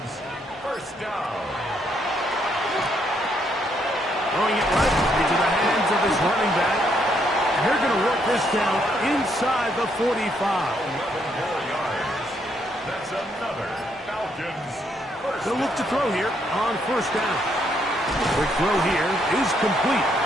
1st down. Throwing it right into the hands of his running back. And they're going to work this down inside the 45. 11 more yards. That's another Falcons first. They'll look to throw here on 1st down. Quick throw here is complete.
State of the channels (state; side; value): normal; both; correlation 0.73